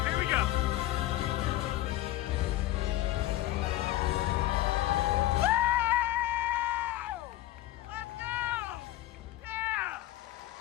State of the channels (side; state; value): right; quieter; 15.4 dB